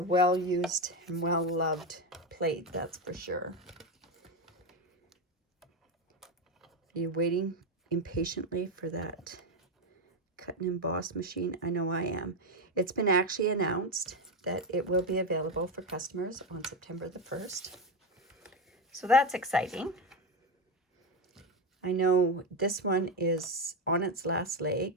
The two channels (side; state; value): both; normal; correlation 0.12